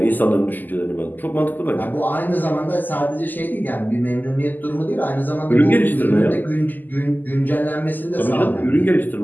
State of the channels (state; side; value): late; right; 0.086 ms